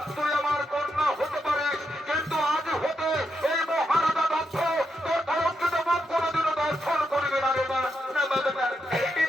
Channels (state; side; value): normal; both; correlation 0.82